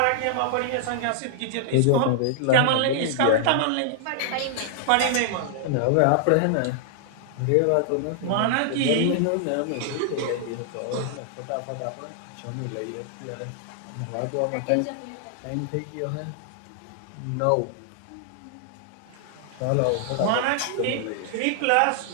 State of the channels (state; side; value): different; both; correlation -0.01